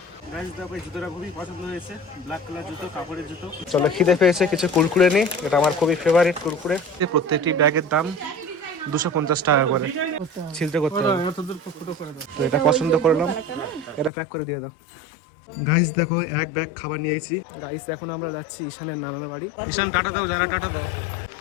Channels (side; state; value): right; drops out; at 14.1 s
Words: গাইস দেখো এই জুতোটা খুবই পছন্দ হয়েছে, ব্ল্যাক কালার জুতো, কাপড়ের জুতো। চলো খিদে পেয়েছে, কিছু কুরকুরে নিই, এটা আমার খুবই ফেভারিট কুরকুরে। প্রত্যেকটি ব্যাগের দাম 250 টাকা করে, ছিলতে করতে হবে। তো এটা পছন্দ করলাম, এটা প্যাক করে দিয়ে দাও। গাইস দেখো এক ব্যাগ খাবার নিয়েছি। গাইস এখন আমরা যাচ্ছি ঈশানের নানার বাড়ি। ঈশান টাটা দাও, যারা টাটা দাও।